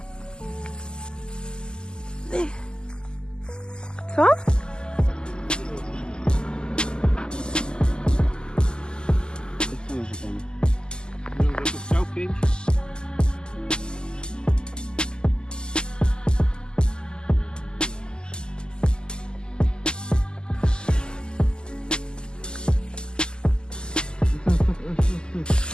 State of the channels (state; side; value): late; right; 0.046 ms